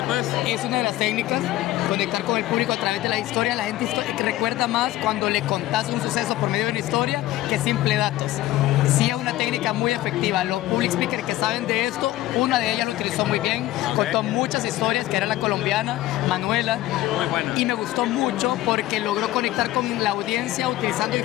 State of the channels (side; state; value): right; quieter; 15.6 dB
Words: es? Es una de las técnicas, conectar con el público a través de la historia. La gente recuerda más cuando le contás un suceso por medio de una historia que simple datos. Sí es una técnica muy efectiva. Los public speakers que saben de esto, una de ellas lo utilizó muy bien, contó muchas historias, que era la colombiana, Manuela. Muy buena. Y me gustó mucho porque logró conectar con la audiencia utilizando